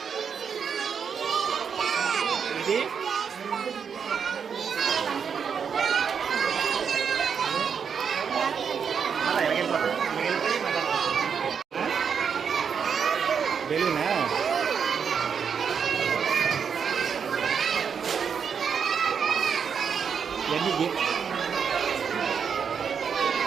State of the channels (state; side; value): quieter; left; 6.8 dB